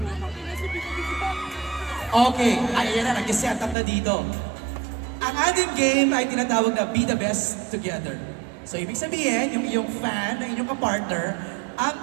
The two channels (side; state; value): left; drops out; at 3.8 s